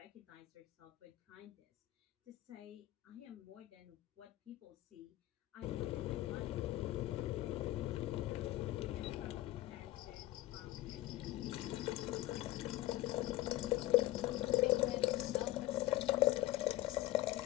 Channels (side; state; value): right; quieter; 16.7 dB